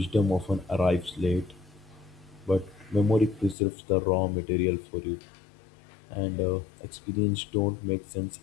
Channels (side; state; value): right; drops out; at 3.6 s